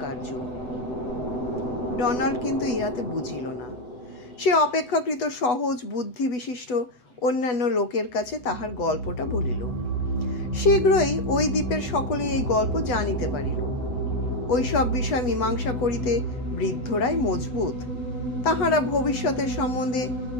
কার্য। ডোনাল্ড কিন্তু ইহাতে বুঝিল না। সে অপেক্ষাকৃত সহজ বুদ্ধি বিশিষ্ট অন্যান্য লোকের কাছে তাহার গল্পটা বলিল। শীঘ্রই ওই দ্বীপের সকলেই এই গল্প জানিতে পারিল। ওই সব বিষয় মীমাংসা করিতে বৃদ্ধরাই মজবুত। তাহারা ভবিষ্যতের সম্বন্ধে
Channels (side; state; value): right; late; 8.0 ms